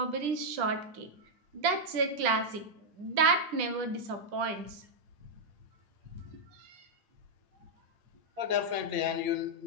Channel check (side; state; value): left; late; 10 ms